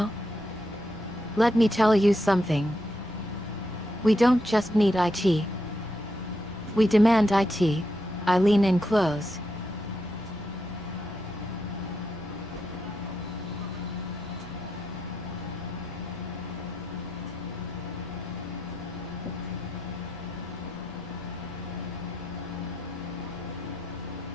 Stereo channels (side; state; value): both; normal; correlation 0.82